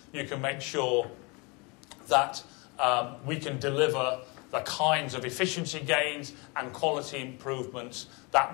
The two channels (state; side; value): quieter; right; 29.4 dB